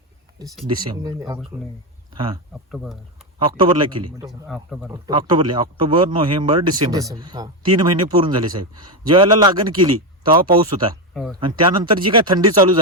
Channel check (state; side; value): normal; both; correlation 0.10